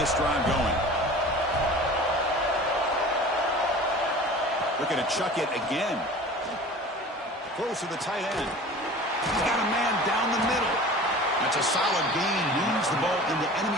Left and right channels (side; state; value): both; normal; correlation 0.40